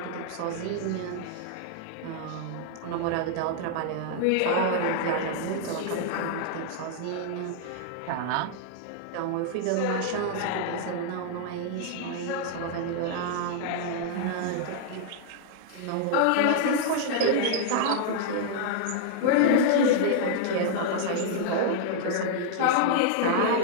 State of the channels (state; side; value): different; both; correlation -0.01